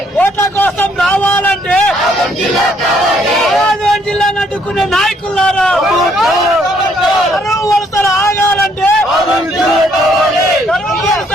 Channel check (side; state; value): both; normal; correlation 0.68